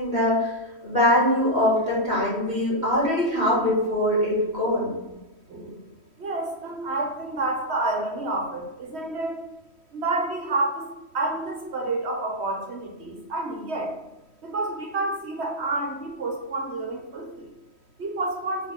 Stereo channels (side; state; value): left; late; 3.1 ms